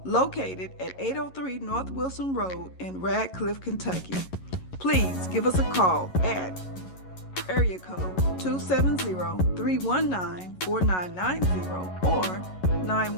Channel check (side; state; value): right; late; 11 ms